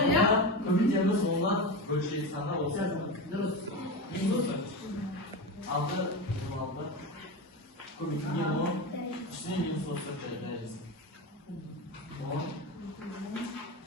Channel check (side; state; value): both; normal; correlation 0.21